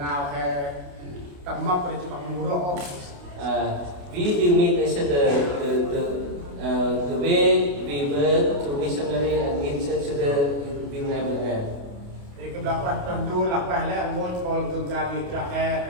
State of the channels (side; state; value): left; late; 28 ms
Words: hè tầm mập rồi chỉ bằng mù rô. We will meet each other the way we work to missionary and meet each other will never end. Thì cái đó là tuần du là phải là muốn còn thường ra đi ra